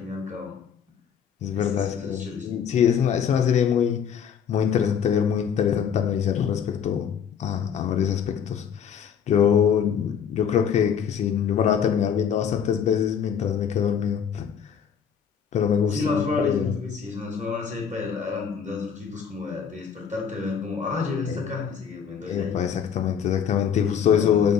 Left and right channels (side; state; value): right; quieter; 7.7 dB